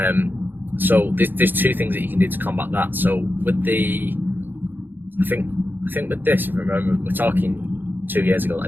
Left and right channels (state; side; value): late; left; 0.093 ms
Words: So there's 2 things that you can do to combat that. So with I think with this, if I remember, we're talking 2 years ago that I